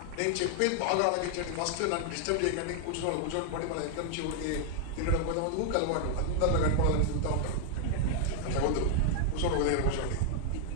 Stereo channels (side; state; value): both; different; correlation 0.00